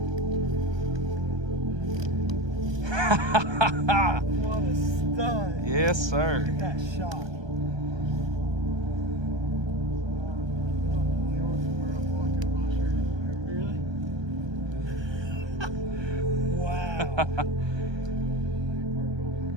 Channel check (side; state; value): left; late; 1.2 ms